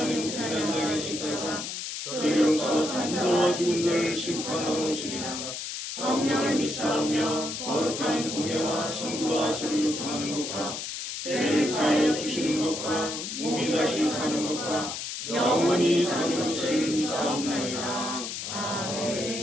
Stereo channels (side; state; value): left; noise; hiss, 6 dB below the sound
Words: 우편에 앉아 계시다가 저희로서 산자와 죽은 자를 심판하러 오시리라. 성령을 믿사오며 거룩한 공예와 성도와 서로 교통하는 것과 죄를 사하여 주시는 것과 몸이 다시 사는 것과 영원히 사는 것을 믿사옵나이다.